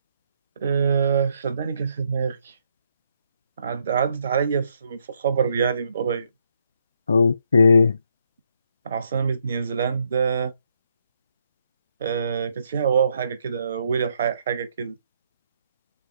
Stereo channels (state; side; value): inverted; both; correlation -0.74